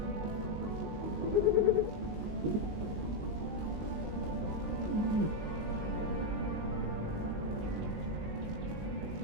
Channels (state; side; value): late; left; 19 ms